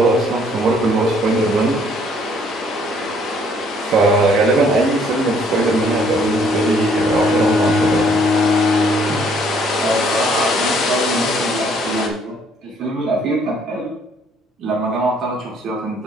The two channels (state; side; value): normal; both; correlation 0.63